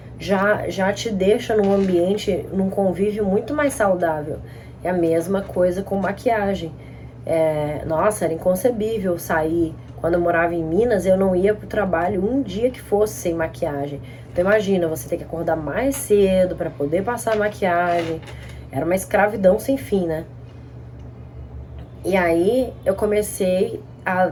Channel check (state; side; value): identical; both; correlation 1.00